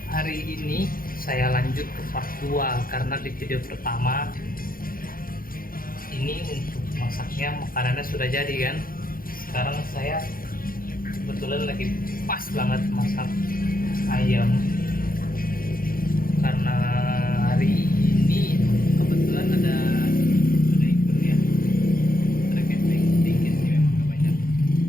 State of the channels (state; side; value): late; right; 0.42 ms